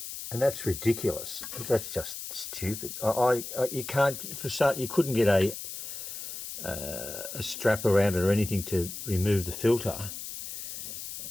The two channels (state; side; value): noise; left; hiss, 8 dB below the sound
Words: and that's ridiculous. That's just stupid. You can't, for start, you couldn't get a strap around it or anything to remove the filter.